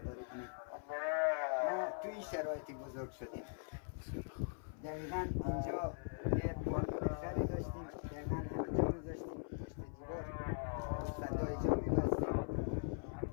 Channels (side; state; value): right; silent; 50 dB below the other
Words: کنم. ما توی این شرایطی بزرگ شدیم. دقیقا اینجا یه بالون خری داشتیم، دقیقا اینجا رو داشتیم پشت دیوار فضای جا می‌بستیم.